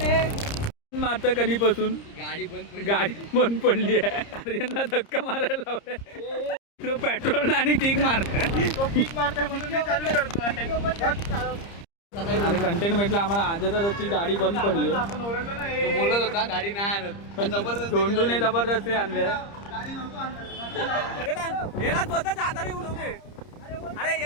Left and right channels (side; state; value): right; late; 30 ms